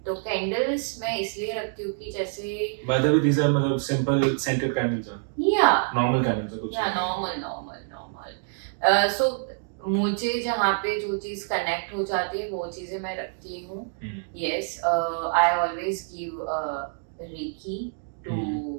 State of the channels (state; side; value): silent; left; digital silence